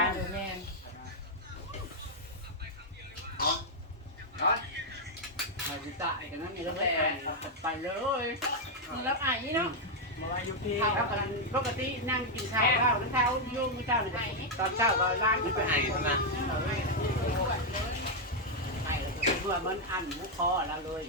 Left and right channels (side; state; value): both; normal; correlation 0.00